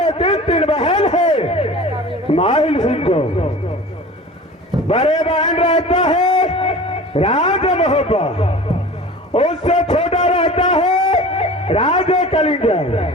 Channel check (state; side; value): normal; both; correlation 0.39